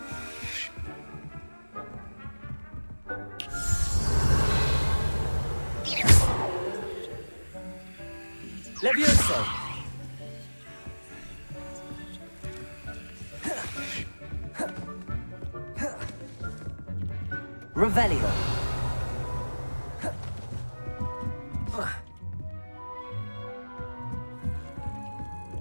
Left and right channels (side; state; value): both; inverted; correlation -1.00